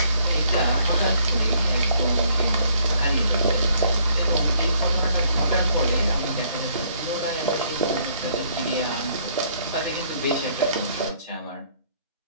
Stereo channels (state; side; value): inverted; both; correlation -0.65